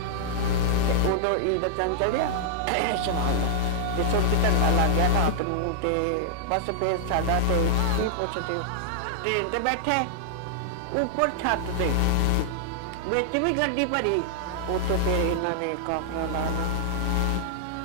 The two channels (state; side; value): different; both; correlation -0.01